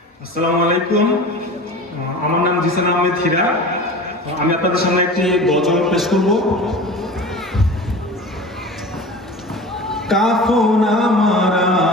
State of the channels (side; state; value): both; normal; correlation 0.35